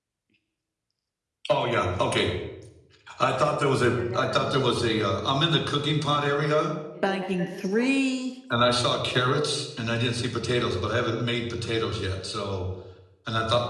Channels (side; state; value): both; identical; correlation 1.00